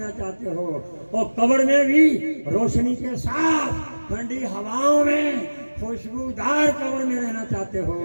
چاہتے ہو اور قبر میں بھی روشنی کے ساتھ ٹھنڈی ہواؤں میں خوشبودار قبر میں رہنا چاہتے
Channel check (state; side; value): inverted; both; correlation -1.00